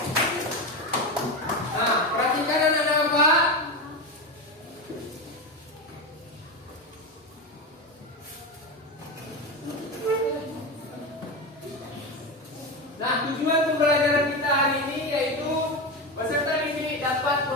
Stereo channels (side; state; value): both; normal; correlation 0.18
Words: Nah, perhatikan anak-anak Bapak. Nah, tujuan pembelajaran kita hari ini yaitu peserta didik dapat